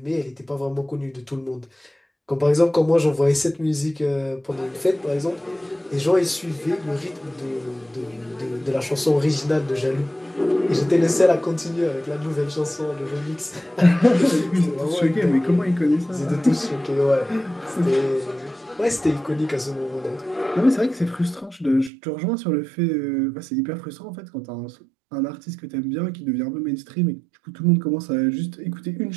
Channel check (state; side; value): drops out; left; at 21.9 s